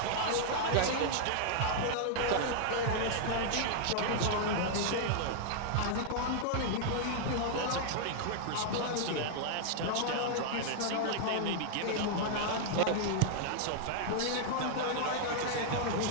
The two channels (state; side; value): different; both; correlation -0.01